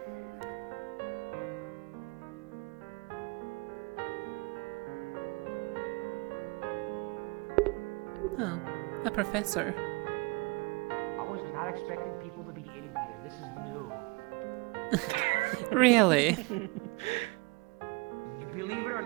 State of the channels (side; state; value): left; quieter; 27.0 dB